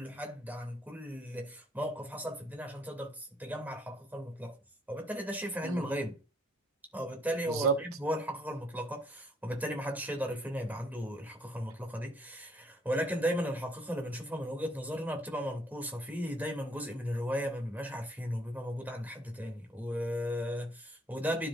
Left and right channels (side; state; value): both; normal; correlation 0.66